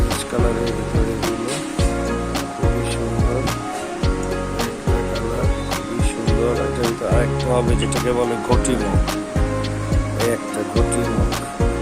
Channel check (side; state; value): both; identical; correlation 1.00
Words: কালারের ভিতরে এগুলো খুবই সুন্দর, আরেকটা হবে যেটাকে বলে ঘটি মুখ, এই একটা ঘটি মুখ।